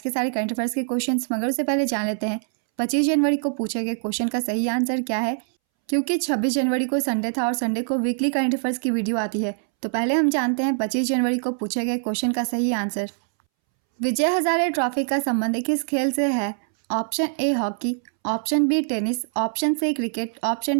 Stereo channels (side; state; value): left; silent; 63 dB below the other